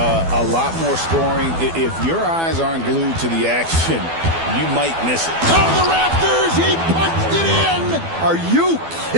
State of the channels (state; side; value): late; left; 12 ms